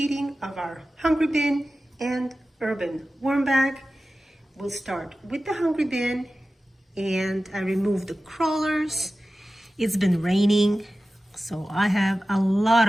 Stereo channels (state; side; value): normal; both; correlation 0.95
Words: of our Hungry Bin and Urban Worm Bag. We'll start with the Hungry Bin, and I removed the crawlers. It's been raining, so I have a lot